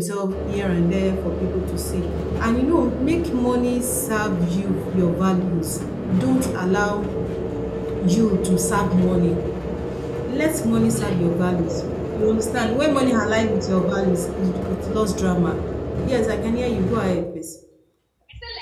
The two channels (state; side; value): identical; both; correlation 1.00